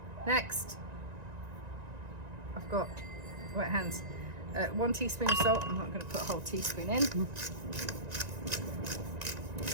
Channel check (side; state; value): left; late; 1.9 ms